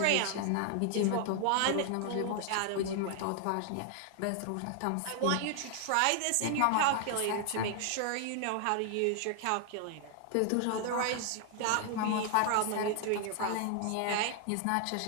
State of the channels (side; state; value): both; different; correlation 0.00